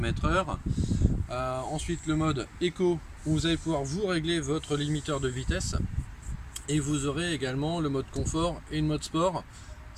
Ensuite le mode Eco où vous allez pouvoir vous régler votre limiteur de vitesse. Et vous aurez également le mode confort et le mode sport.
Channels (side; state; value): both; identical; correlation 1.00